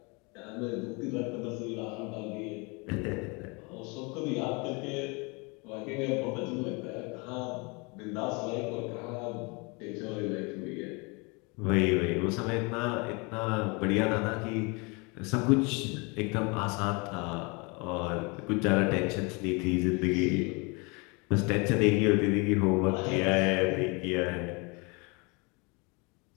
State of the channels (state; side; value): quieter; right; 29.7 dB